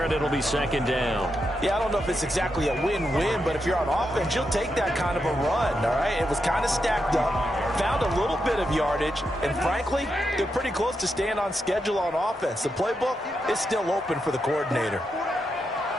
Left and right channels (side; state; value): both; normal; correlation 0.85